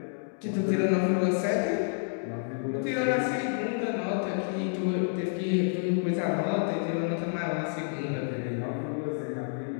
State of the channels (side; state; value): right; silent; digital silence